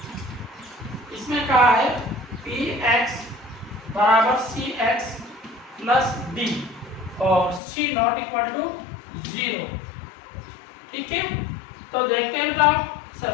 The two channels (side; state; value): right; drops out; at 7.6 s